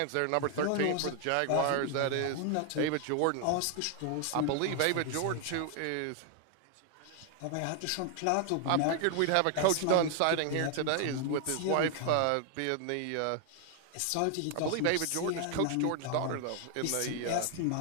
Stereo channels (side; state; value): both; different; correlation 0.00